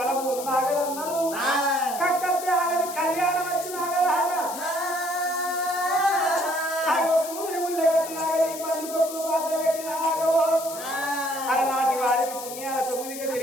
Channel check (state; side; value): noise; left; hiss, 11 dB below the sound